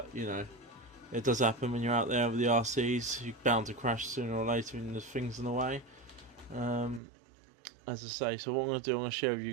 you know, it does happen when you're out there with the RCs. You're bound to crash sooner or later when there's things in the way. As I say, so what I'm going to do, I'm going to share with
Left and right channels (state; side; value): drops out; left; at 7.0 s